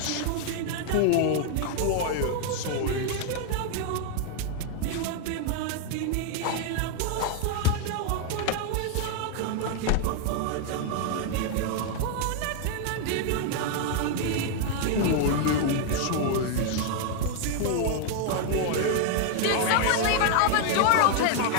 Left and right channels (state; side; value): different; both; correlation 0.00